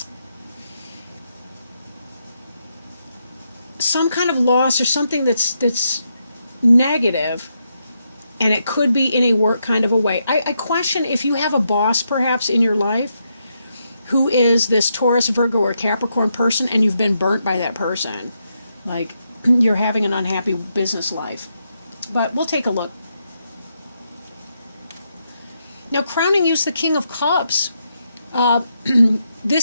loss or something that's negative, and it could be in a work kind of a way. I question if you have a boss perhaps in your life who is this Taurus, Virgo, or Capricorn person, and you've been burnt by that person. Like, you're having an unhappy business life. But we'll take a look. Now, crowning you is the King of Cups.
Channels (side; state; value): both; inverted; correlation -0.82